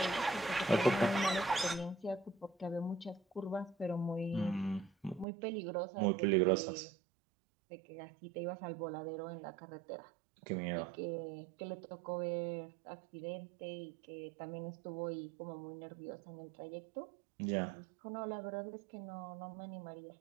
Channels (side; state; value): left; drops out; at 5.2 s